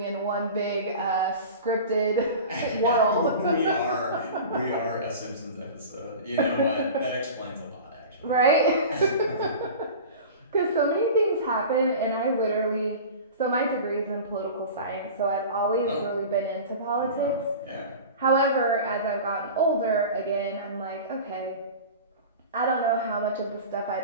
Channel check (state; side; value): inverted; both; correlation -0.35